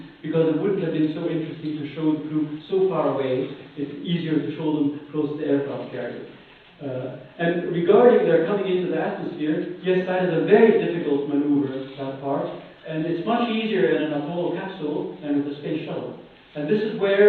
because it wouldn't have been so interesting to show the crew so far away. It's easier to show them close to the aircraft carrier. And regarding their coming into the atmosphere, yes, that is a very difficult maneuver, that part. And it's much easier in an Apollo capsule than with a space shuttle. And this is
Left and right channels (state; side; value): identical; both; correlation 1.00